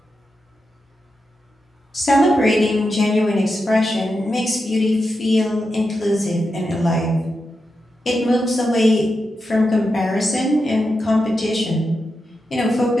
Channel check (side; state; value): both; normal; correlation 0.88